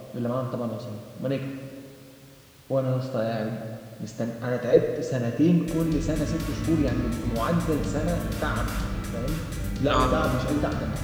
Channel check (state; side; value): identical; both; correlation 1.00